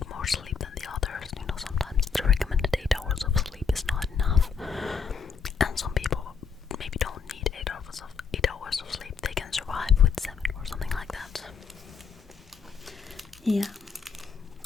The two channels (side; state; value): right; quieter; 6.0 dB